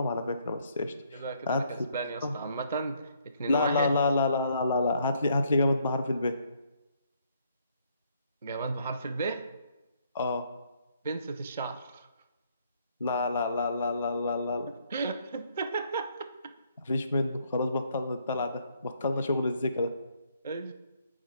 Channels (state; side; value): inverted; both; correlation -0.68